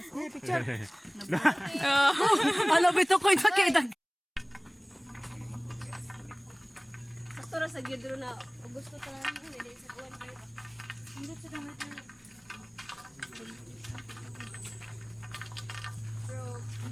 Oh. Ano bito ko ito kay dag. Sakto ra sa gidro na gusto ta lang ko dili sa kuwan kayo. Hindi sa dami.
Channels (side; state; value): both; identical; correlation 1.00